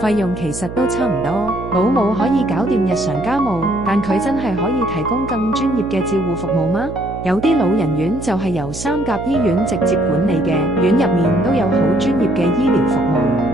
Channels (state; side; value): noise; right; hum, 10 dB below the sound